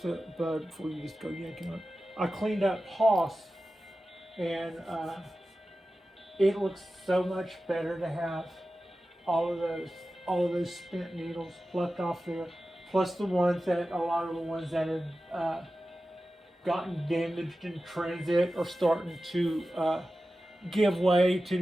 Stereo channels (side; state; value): both; normal; correlation 0.94